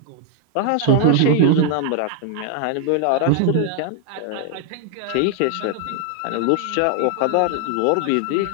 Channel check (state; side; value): different; both; correlation 0.00